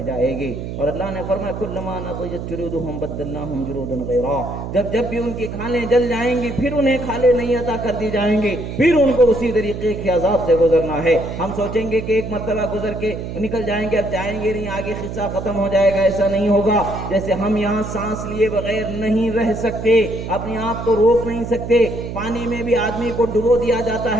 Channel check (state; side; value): noise; right; hum, 7 dB below the sound